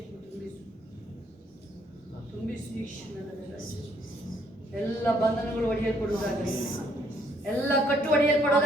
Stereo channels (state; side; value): normal; both; correlation 0.67